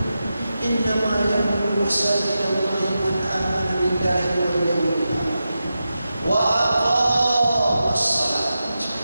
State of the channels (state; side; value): inverted; both; correlation -0.90